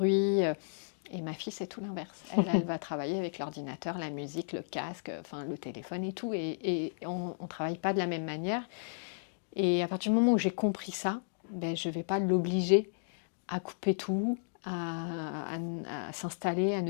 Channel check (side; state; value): right; silent; digital silence